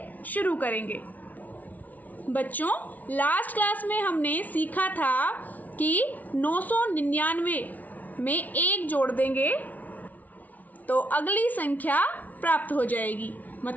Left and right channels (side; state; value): right; late; 0.075 ms